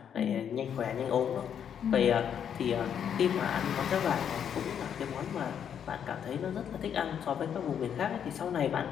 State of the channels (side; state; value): right; quieter; 8.5 dB